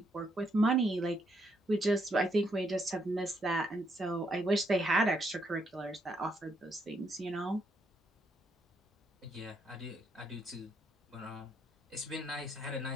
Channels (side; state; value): both; normal; correlation 0.75